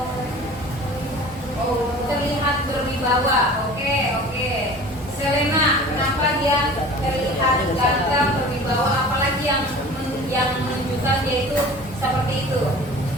Oh, terlihat berwibawa. Oke. Selena, kenapa dia terlihat ganteng, berwibawa, apalagi yang menunjukkan dia itu seperti itu?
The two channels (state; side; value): normal; both; correlation 0.42